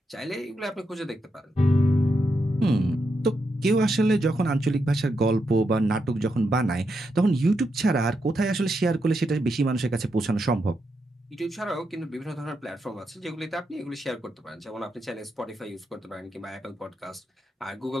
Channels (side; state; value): both; normal; correlation 0.83